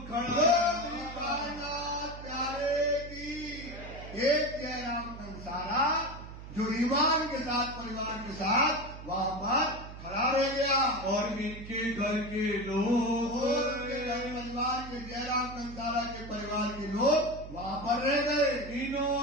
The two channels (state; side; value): noise; right; hum, 13 dB below the sound